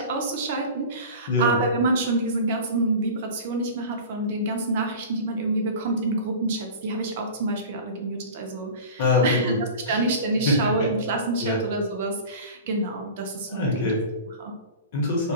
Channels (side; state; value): both; inverted; correlation -0.35